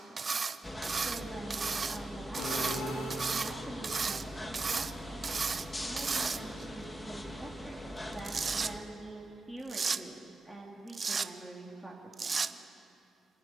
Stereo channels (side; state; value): left; quieter; 3.1 dB